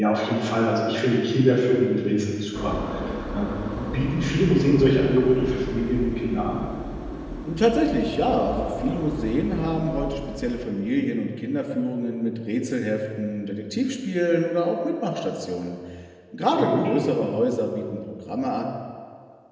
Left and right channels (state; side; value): identical; both; correlation 1.00